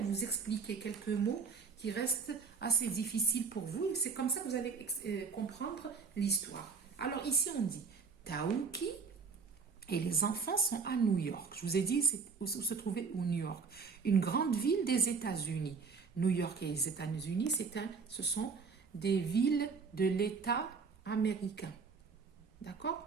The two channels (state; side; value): quieter; left; 5.2 dB